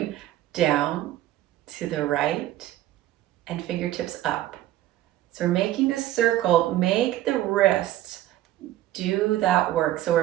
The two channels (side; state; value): left; quieter; 14.1 dB